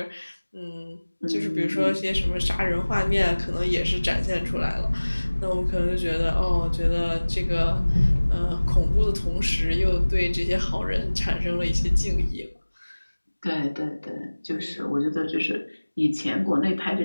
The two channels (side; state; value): both; inverted; correlation -1.00